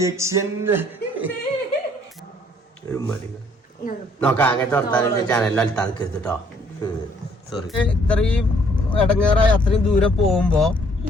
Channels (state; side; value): normal; both; correlation 0.63